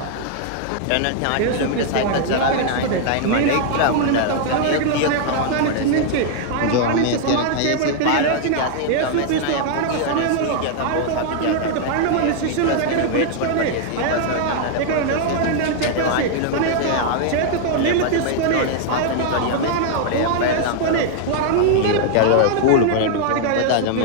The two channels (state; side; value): different; both; correlation 0.00